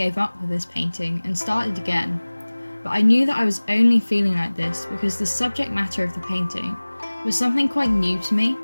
up with this painting and started again, but I knew that I was only feeling like this because the subject matter of the painting was something quite new to me.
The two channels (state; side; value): inverted; both; correlation -1.00